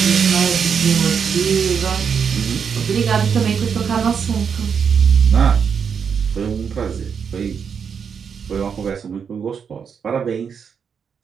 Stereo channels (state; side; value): quieter; left; 6.8 dB